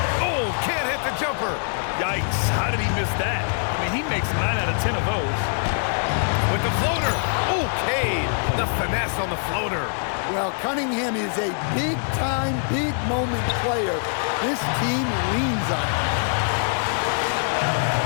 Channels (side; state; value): right; silent; 62 dB below the other